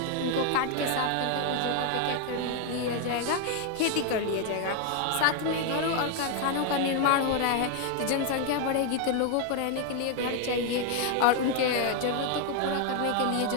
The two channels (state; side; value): different; both; correlation 0.00